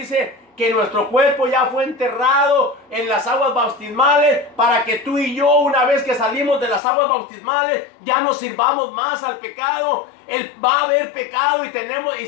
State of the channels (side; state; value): right; drops out; at 6.8 s